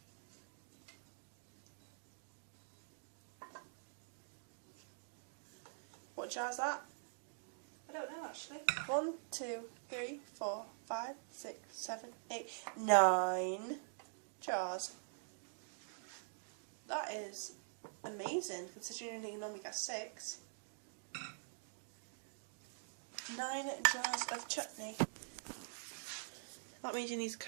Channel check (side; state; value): left; silent; digital silence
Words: What jar's that? I don't know actually. 1, 2, 3, 4, 5, 6, 7, 8, 9 jars. That is amazing, considering you normally get 6. 9 jars of chutney. That means you need to